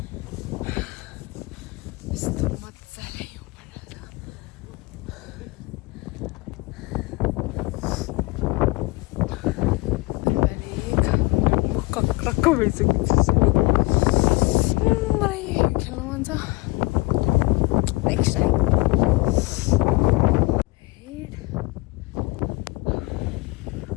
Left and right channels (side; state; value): right; quieter; 22.7 dB